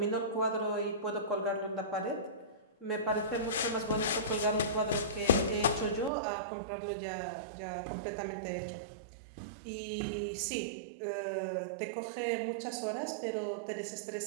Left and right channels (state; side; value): drops out; left; at 6.1 s